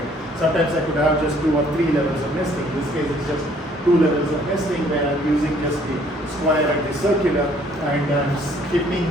Sometimes I could have just 2 or 3 levels of nesting. In this case, it's just 2 levels of nesting where I'm using just the square and the circular, and I'm skipping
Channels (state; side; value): normal; both; correlation 0.61